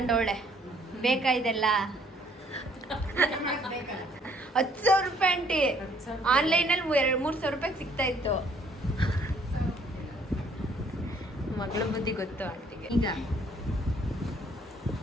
ಬೇಕಾ ಇದೆಲ್ಲ? 10,000 ರೂಪಾಯಿ ಆಂಟಿ. ಆನ್ಲೈನಲ್ಲಿ 3,000 ರೂಪಾಯಿಗೆ ಸಿಗ್ತಾ ಇತ್ತು. ಮಗಳ ಬುದ್ಧಿ ಗೊತ್ತು ಆಂಟಿಗೆ. ಈಗ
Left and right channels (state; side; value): normal; both; correlation 0.63